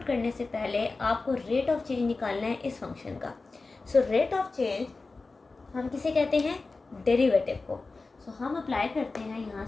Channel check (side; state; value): right; quieter; 3.7 dB